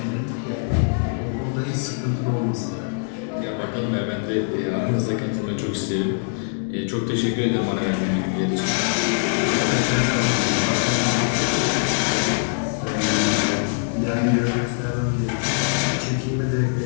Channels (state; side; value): silent; right; digital silence